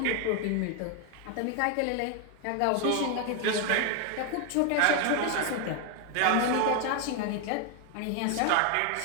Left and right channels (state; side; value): different; both; correlation 0.01